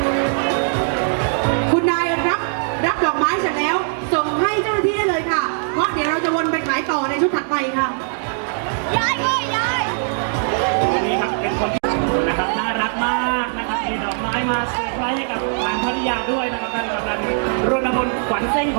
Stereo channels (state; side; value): silent; left; digital silence